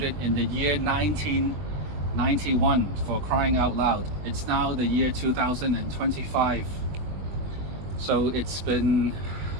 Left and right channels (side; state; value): left; late; 20 ms